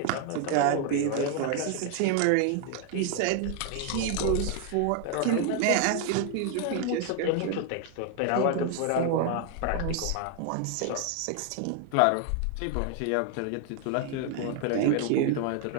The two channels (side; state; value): both; different; correlation 0.00